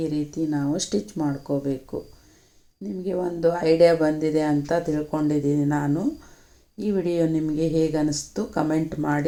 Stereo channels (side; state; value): both; identical; correlation 1.00